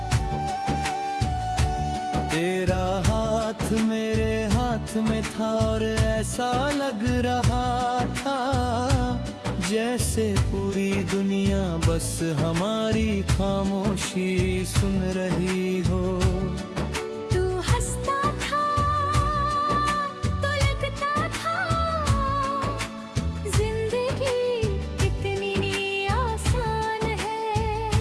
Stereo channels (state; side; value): identical; both; correlation 1.00